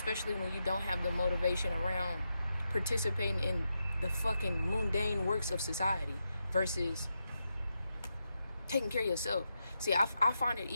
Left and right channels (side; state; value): both; inverted; correlation -0.86